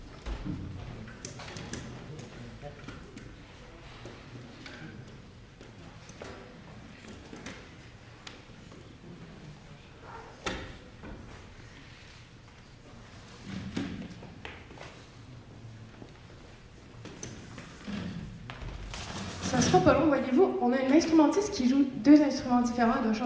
Ça sera pas long, voyez-vous. On a une instrumentiste qui joue 2 instruments différents. Elle doit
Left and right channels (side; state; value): both; identical; correlation 1.00